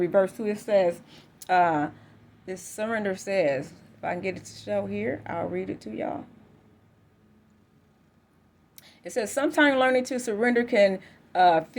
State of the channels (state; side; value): identical; both; correlation 1.00